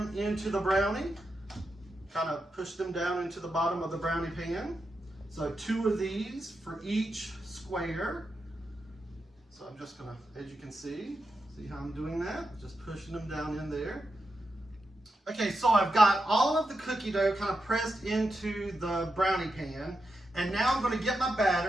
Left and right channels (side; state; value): both; normal; correlation 0.87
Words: into the brownie, kind of push them down into the bottom of the brownie pan. So 2 of these for each square. So I'm just going to, as you can see how I'm doing that? Just pushing them down in there. Okay, so I've got all of the cookie dough kind of pressed into the brownie pan, and now I'm going to get my